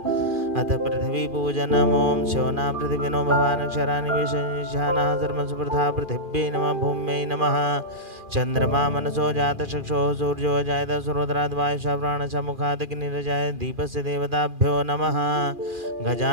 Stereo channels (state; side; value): late; left; 2.4 ms